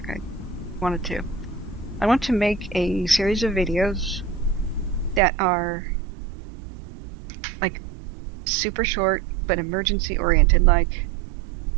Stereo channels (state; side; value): drops out; left; at 5.2 s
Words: I wanted to. I want to make a series of videos that are, like, super short, but emergency-oriented, like,